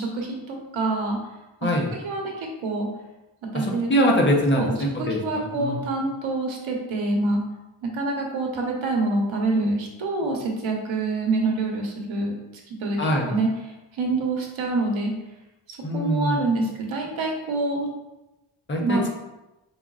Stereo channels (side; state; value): both; normal; correlation 0.41